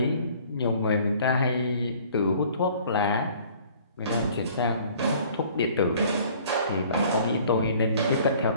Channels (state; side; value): inverted; both; correlation -0.54